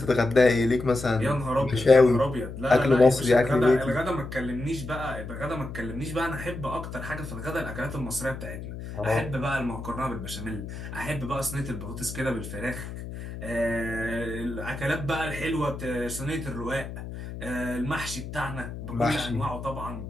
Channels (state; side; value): noise; left; hum, 9 dB below the sound